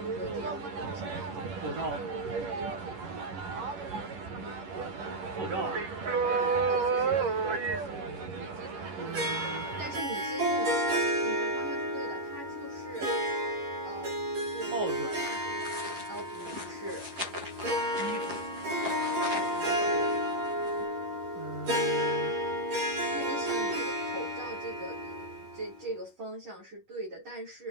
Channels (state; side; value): late; left; 11 ms